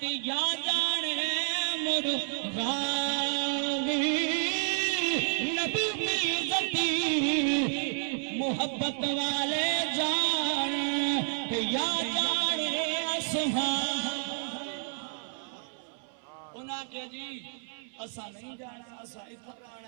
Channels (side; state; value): left; silent; 58 dB below the other